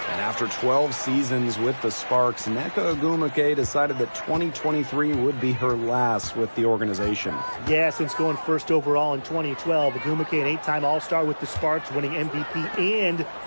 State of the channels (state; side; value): inverted; both; correlation -1.00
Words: after 12 seasons with the Sparks, Nneka Ogwumike decided that 2023 would be her last with the organization. Yeah, since going first overall in 2012, Ogwumike, an 8-time All-Star with the Sparks, winning MVP and